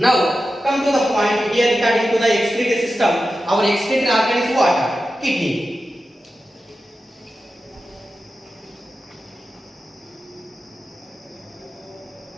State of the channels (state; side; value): normal; both; correlation 0.92